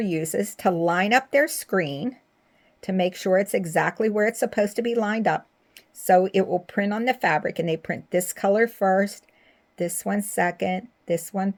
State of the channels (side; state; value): both; identical; correlation 1.00